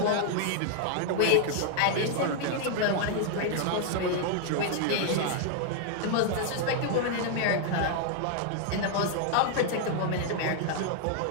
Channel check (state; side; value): different; both; correlation 0.00